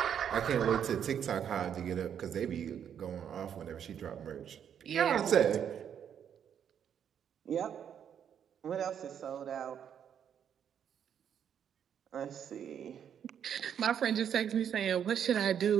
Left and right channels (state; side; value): quieter; left; 8.6 dB